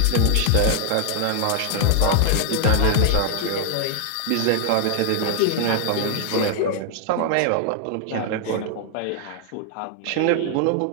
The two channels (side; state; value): both; different; correlation 0.00